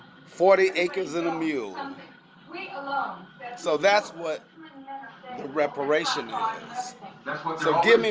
40 acres and a mule. So that's what the reparation is. So give me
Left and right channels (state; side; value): identical; both; correlation 1.00